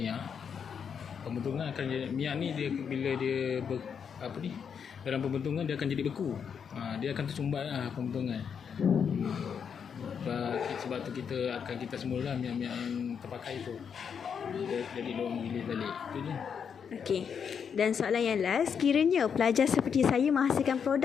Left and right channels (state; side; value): quieter; right; 7.1 dB